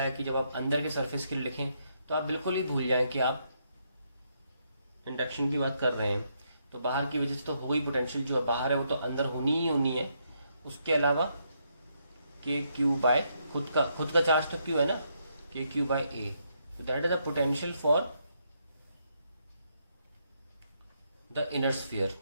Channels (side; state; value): both; inverted; correlation -0.77